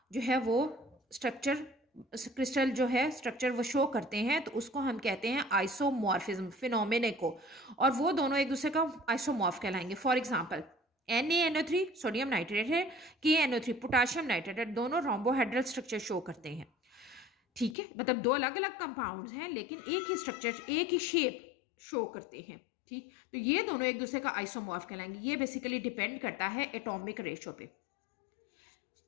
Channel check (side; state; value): right; drops out; at 17.8 s